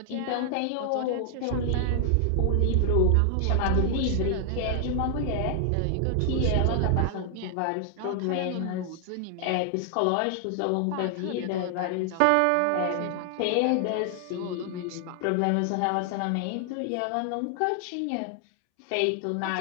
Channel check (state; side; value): different; both; correlation 0.00